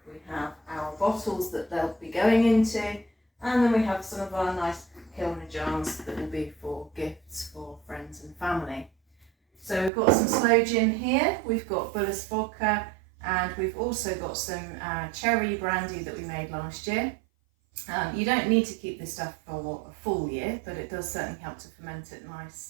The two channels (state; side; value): drops out; left; at 9.9 s